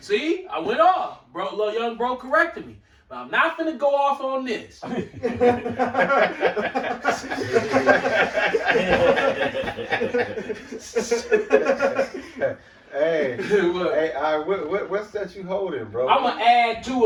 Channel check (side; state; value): both; identical; correlation 1.00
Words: See, I went off. Bro, little young bro corrected me. But I'm not finna go off on this. Hey, what's that you holding, bro? I'm gonna add to